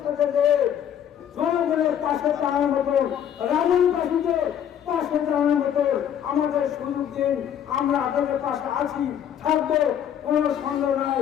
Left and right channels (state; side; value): quieter; right; 9.5 dB